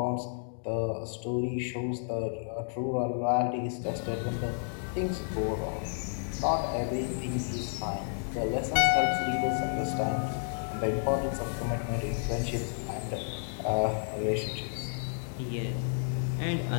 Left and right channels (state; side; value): silent; right; digital silence